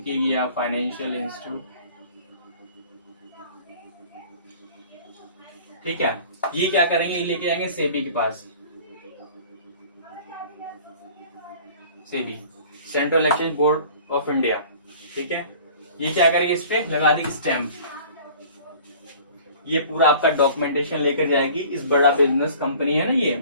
या फाइनेंशियल इंस्टीट्यूट, ठीक है, ये क्या करेंगे, ये लेके जाएंगे सेबी के पास, SEBI central exchange board of India, ठीक है। ये क्या करेंगे, इस पे लगा देंगे स्टैंप, ये पूरा आपका डॉक्यूमेंटेशन लेकर जाएगी। इस बड़ा बिजनेस कंपनी है ना, ये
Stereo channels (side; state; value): both; inverted; correlation -0.47